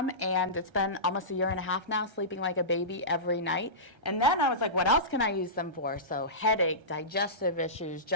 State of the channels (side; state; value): left; late; 1.3 ms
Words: and it's been almost 1.5 years now, sleeping like a baby every night. And then I was like, what else can I use them for? So headache, digestive issues,